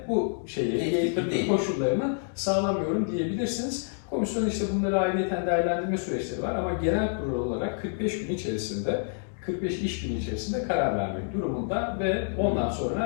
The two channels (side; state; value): right; silent; digital silence